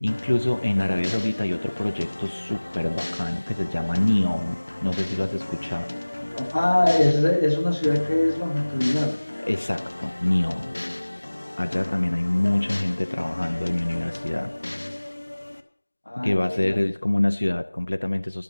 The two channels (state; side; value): inverted; both; correlation -1.00